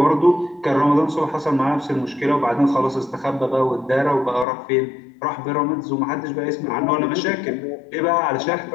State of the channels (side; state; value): right; drops out; at 4.5 s